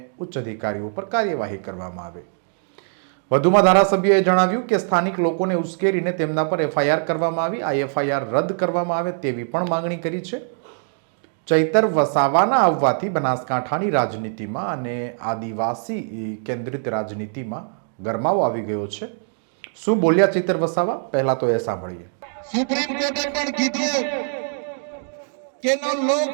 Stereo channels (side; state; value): left; silent; digital silence